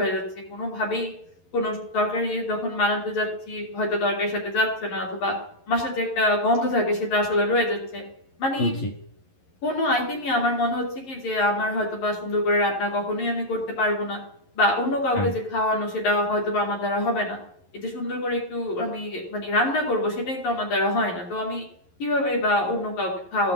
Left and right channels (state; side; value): late; right; 11 ms